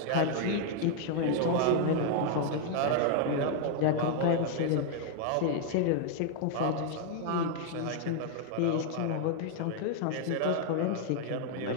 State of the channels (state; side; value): different; both; correlation 0.00